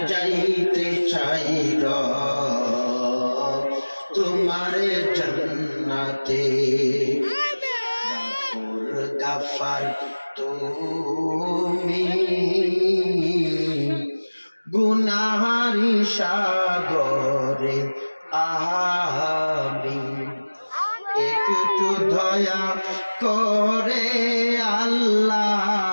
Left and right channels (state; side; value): inverted; both; correlation -1.00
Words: যাইতে চাইর তোমার জান্নাতে গাফার তুমি গুনাহারি সাগরে আমি একটু দয়া করে আল্লাহ